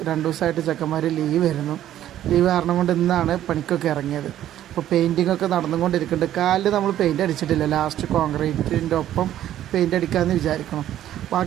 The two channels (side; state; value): left; quieter; 12.1 dB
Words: 2 ദിവസമായിട്ട് ചെക്കന്മാർ ലീവ് കാരണം കൊണ്ട് ഇന്നാണ് പണിക്കൊക്കെ ഇറങ്ങിയത്. അപ്പോൾ പെയിൻറ്റിങ്ങൊക്കെ നടന്നുകൊണ്ടിരിക്കുന്നുണ്ട്. കാലിൽ നമ്മൾ പെയിൻറ്റ് അടിച്ചിട്ടില്ല. ലാസ്റ്റ് കോൺക്രീറ്റിൻ്റെ ഒപ്പം പെയിൻറ്റ് അടിക്കാമെന്ന് വിചാരിക്കണം.